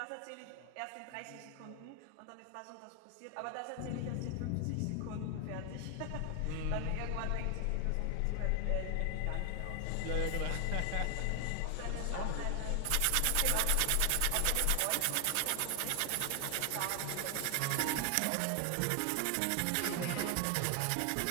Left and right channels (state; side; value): different; both; correlation 0.00